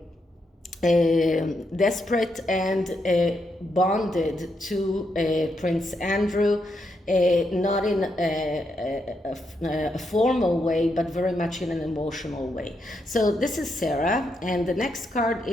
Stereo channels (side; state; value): both; normal; correlation 0.81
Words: desperate and bonded to Prince Andrew, not in a formal way, but very much in an emotional way. So this is Sarah, and the next card